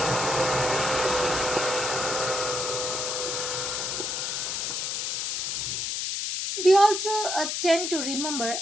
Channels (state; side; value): noise; left; hiss, 1 dB below the sound